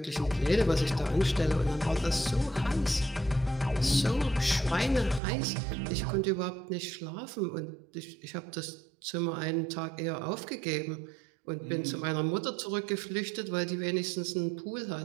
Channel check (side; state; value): left; drops out; at 5.2 s